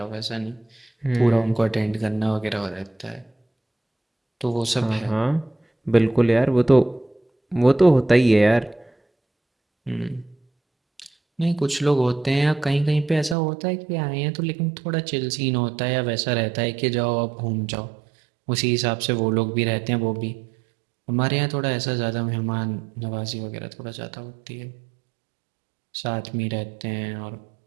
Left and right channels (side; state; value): left; drops out; at 13.4 s